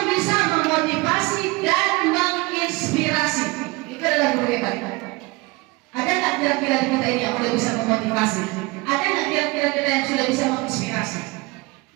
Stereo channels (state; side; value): quieter; left; 24.5 dB